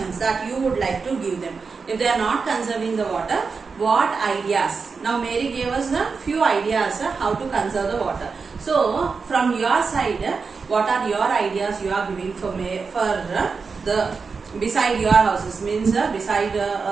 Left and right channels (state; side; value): quieter; left; 5.0 dB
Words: that you would like to give them. If they are not conserving the water, what ideas? Now Mary gave us a few ideas how to conserve the water. So from your side, what are your ideas you are giving for the beside your houses, means beside